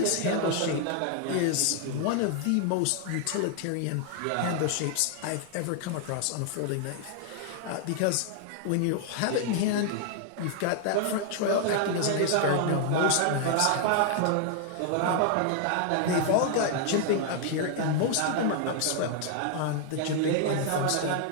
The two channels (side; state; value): both; different; correlation 0.00